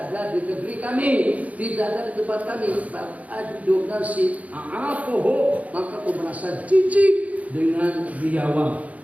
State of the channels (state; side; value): late; left; 0.069 ms